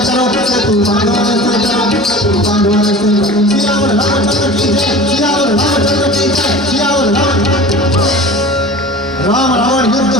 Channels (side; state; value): both; normal; correlation 0.38